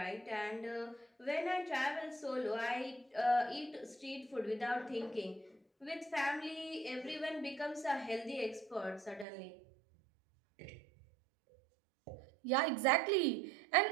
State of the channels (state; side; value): drops out; left; at 9.2 s